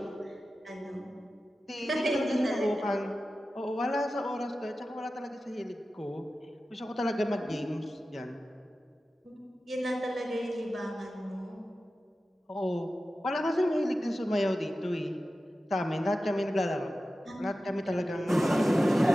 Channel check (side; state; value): both; normal; correlation 0.94